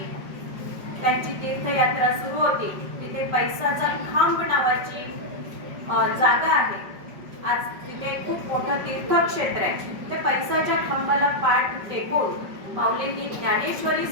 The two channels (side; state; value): left; late; 5.3 ms